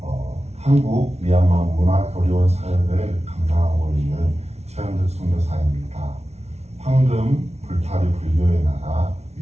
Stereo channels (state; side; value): late; left; 0.31 ms